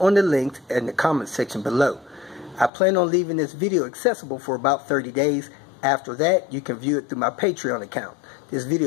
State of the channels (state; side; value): drops out; right; at 2.7 s